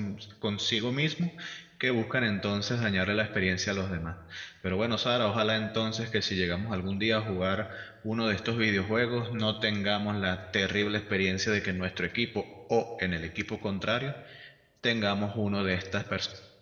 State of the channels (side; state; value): both; identical; correlation 1.00